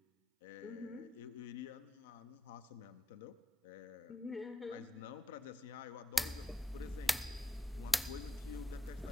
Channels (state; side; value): normal; both; correlation 0.87